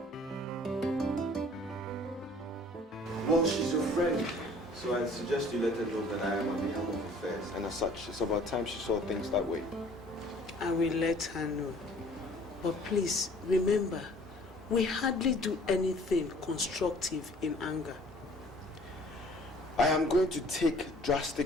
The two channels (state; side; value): normal; both; correlation 0.53